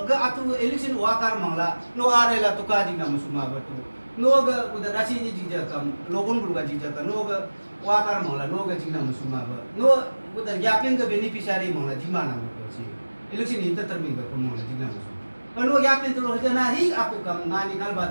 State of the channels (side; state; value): both; inverted; correlation -1.00